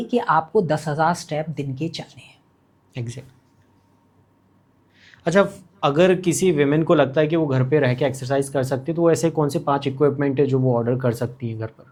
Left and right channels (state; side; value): identical; both; correlation 1.00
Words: कि आपको 10,000 स्टेप दिन के चलने हैं। एग्जैक्ट। अच्छा, अगर किसी विमेन को लगता है कि वो घर पे रह के एक्सरसाइज कर सकती है, तो ऐसे कौन से 5 इक्विपमेंट है जो वो ऑर्डर कर सकती है घर